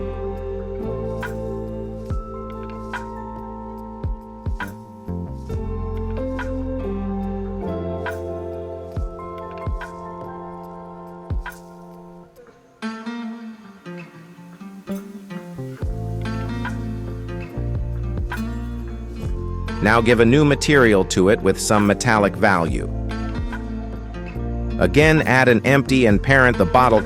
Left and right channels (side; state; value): both; identical; correlation 1.00